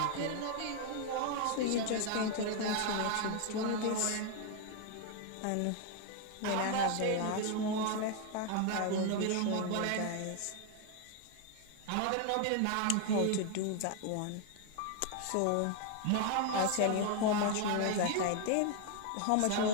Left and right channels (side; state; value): both; different; correlation 0.01